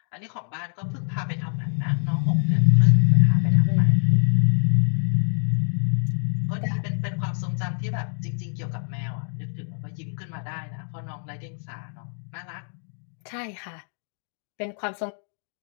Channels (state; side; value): silent; right; 62 dB below the other